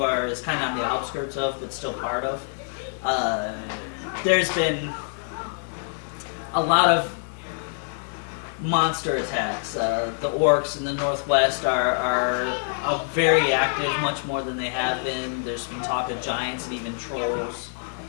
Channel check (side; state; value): right; silent; 61 dB below the other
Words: is kind of on the outskirts of, but still part of. there's been a lot of monster attacks. The orcs in the northwest are very active, much more than they have been. There's been talk of giants and even trolls.